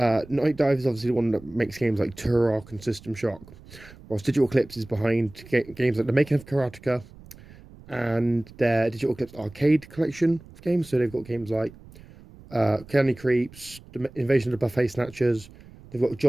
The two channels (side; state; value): right; noise; rumble, 21 dB below the sound